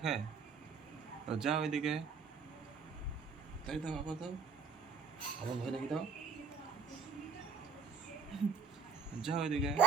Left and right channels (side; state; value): left; quieter; 5.3 dB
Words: যাও এদিকে, তাই দাও, আবার দাও, আবার ভয় দেখে দাও। যাও এদিকে।